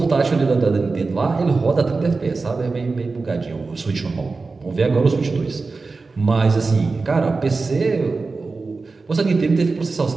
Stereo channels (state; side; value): quieter; left; 4.0 dB